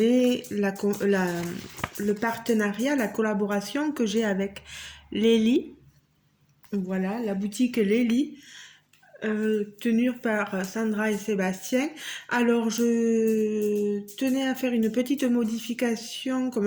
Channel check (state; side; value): identical; both; correlation 1.00